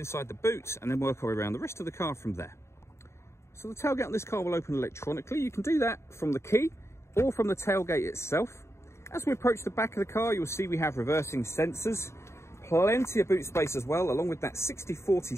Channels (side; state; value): right; late; 0.13 ms